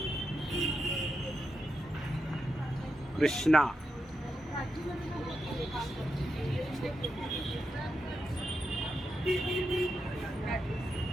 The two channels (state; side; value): normal; both; correlation 0.86